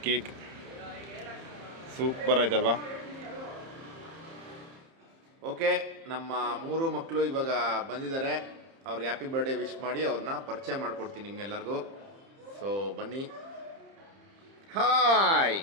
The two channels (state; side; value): late; left; 30 ms